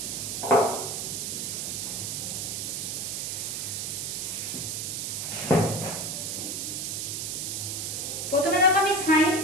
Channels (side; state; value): right; noise; hiss, 3 dB below the sound